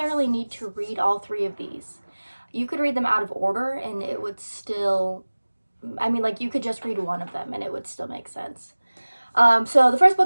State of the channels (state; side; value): inverted; both; correlation -1.00